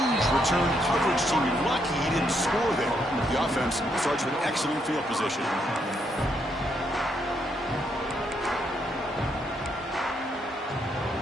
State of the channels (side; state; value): both; normal; correlation 0.76